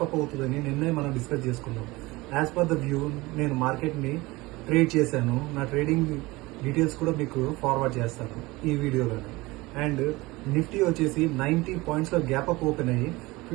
అప్ అవుతుందని నిన్నే మనం డిస్కస్ చేసుకున్నాం. యాజ్ పర్ ద వ్యూ నేను మార్కెట్ని ట్రేడ్ చేశాను. నా ట్రేడింగ్ డీటెయిల్స్ కూడా మీకు ఫార్వర్డ్ చేస్తాను ఈ వీడియోలోనే. అండ్ నిఫ్టీ వచ్చేసి 90 పాయింట్స్లో గ్యాప్ అప్ ఓపెన్ అయ్యి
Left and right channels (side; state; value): left; quieter; 21.6 dB